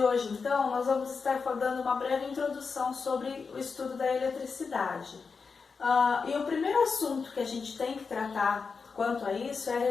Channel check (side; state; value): right; quieter; 5.1 dB